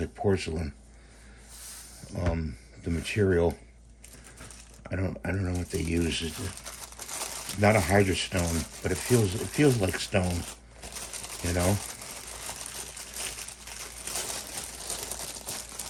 porcelain. The material, I don't know what they use. It's not a hydrostone, but it feels like stone. You know.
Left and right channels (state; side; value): identical; both; correlation 1.00